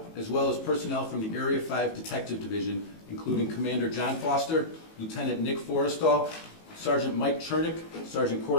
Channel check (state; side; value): late; right; 18 ms